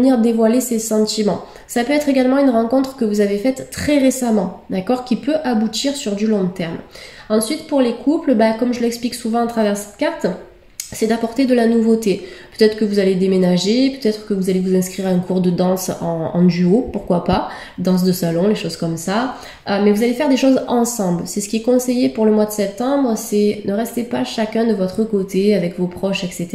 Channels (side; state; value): both; identical; correlation 1.00